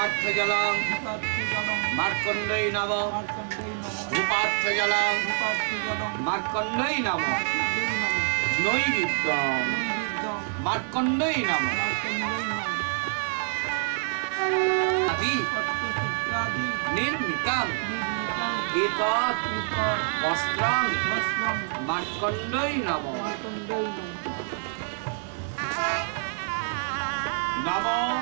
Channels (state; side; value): silent; left; digital silence